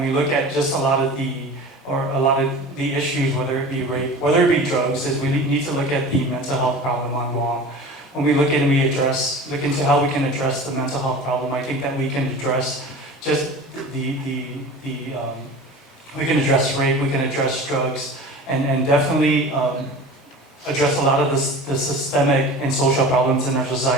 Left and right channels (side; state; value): both; normal; correlation 0.37